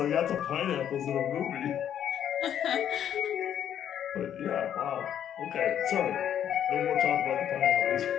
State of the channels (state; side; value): quieter; right; 9.7 dB